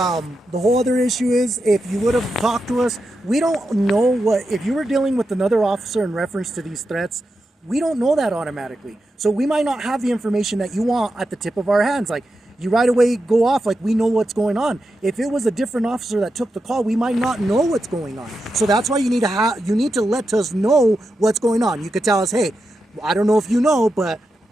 whole other issue is if you would have talked to us, we don't know if you were dealing with another officer in reference to these threats, we don't know that automatically. So we might not have the information that you want at the tip of our hands. Like, you right away go off like we know what's going on. If it was a different officer that took the call, we might not know what's going on. So that's why you need to let us know what's going on. You could tell us, hey, I don't know if you know, but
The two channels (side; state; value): both; normal; correlation 0.88